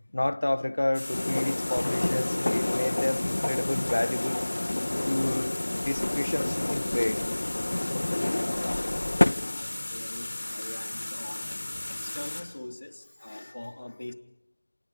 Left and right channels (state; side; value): inverted; both; correlation -1.00